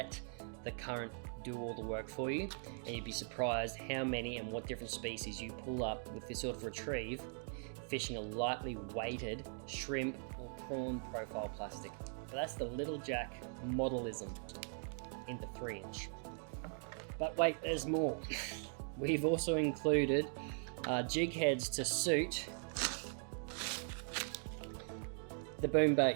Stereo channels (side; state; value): left; silent; 51 dB below the other